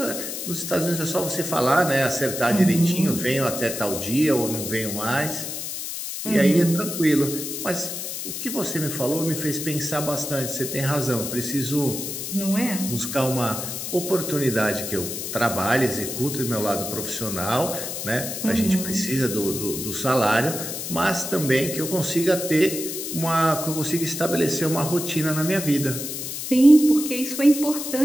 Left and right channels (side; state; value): left; noise; hiss, 6 dB below the sound